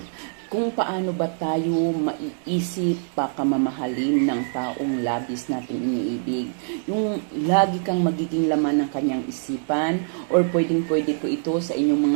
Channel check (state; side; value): silent; left; digital silence